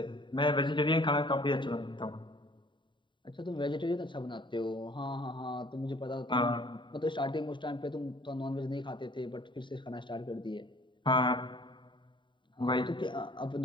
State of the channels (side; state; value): right; late; 0.23 ms